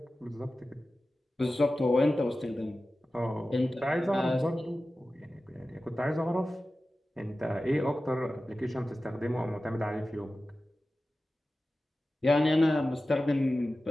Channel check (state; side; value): normal; both; correlation 0.95